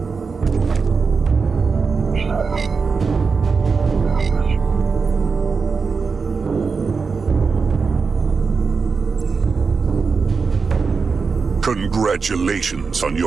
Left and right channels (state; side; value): quieter; left; 5.0 dB